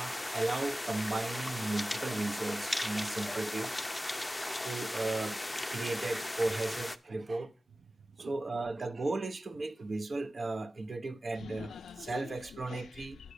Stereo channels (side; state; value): both; normal; correlation 0.95